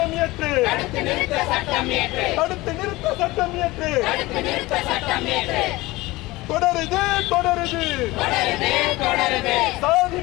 இயற்று. தொடருது சாதி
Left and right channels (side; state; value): right; quieter; 20.2 dB